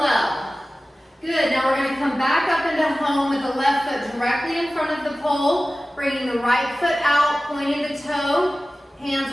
Good, now we're going to come back up into home with the left foot directly in front of the pole, bringing the right foot out, pointing the toe. Hands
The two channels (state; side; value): normal; both; correlation 0.96